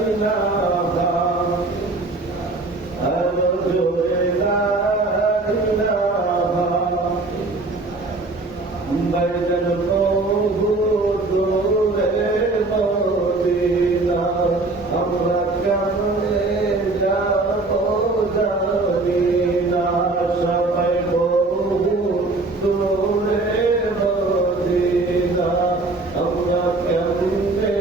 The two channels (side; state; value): left; quieter; 3.2 dB